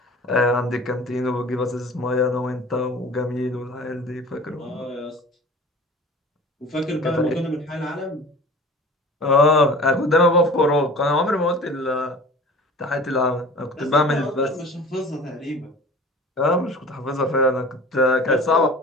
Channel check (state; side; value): normal; both; correlation 0.41